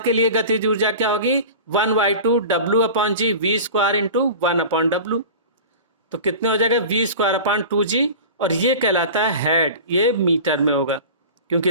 लिए गतिज ऊर्जा क्या होगी, 1/2 W अपॉन जी V² इंटू 1/W। तो कितने हो जाएगा, V² अपॉन 2g, और ये कहलाता है हेड। ये मीटर में होगा,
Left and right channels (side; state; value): both; inverted; correlation -0.35